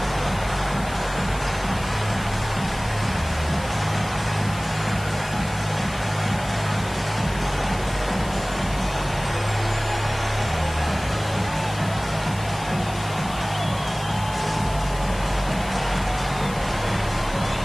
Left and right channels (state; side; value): noise; left; hiss, 15 dB below the sound